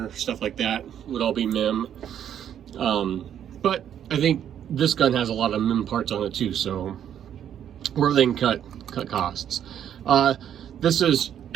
stuff like that would all be MIM. But I think this gun has a lot of MIM parts on it too, so where they can cut costs. This is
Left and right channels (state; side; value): quieter; left; 9.7 dB